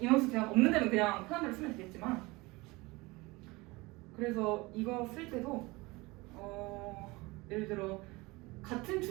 인원수 제한 없는 데는 그냥 편한 대로 쓰면 되겠지만, 그래서 이거 쓸 때도 예를 들어 같은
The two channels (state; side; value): quieter; left; 23.0 dB